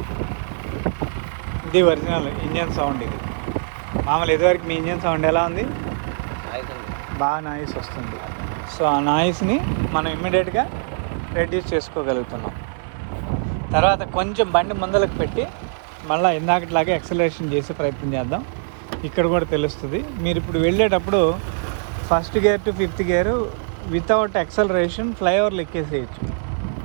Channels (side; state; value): left; silent; digital silence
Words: ఇది ఒరిజినల్ ఇంజన్ సౌండ్. ఇది మామూలు ఇదివరకు మీ ఇంజన్ సౌండ్ ఎలా ఉంది? బాగా నాయిస్ వస్తుంది. సో ఆ నాయిస్ని మనం ఇమ్మీడియట్గా రెడ్యూస్ చేసుకోగలుగుతున్నాం. తర్వాత కొంచెం బండి ముందలకు పెట్టి మళ్ళీ ఇందాకట్లాగే యాక్సిలరేషన్ చేసే ప్రయత్నం చేద్దాం. ఇక్కడ కూడా తెలుస్తుంది. మీరు ఇప్పుడు వెళ్ళేటప్పుడు first gear to fifth gear without acceleration ఫ్లైఓవర్లు ఎక్కేసేయచ్చు.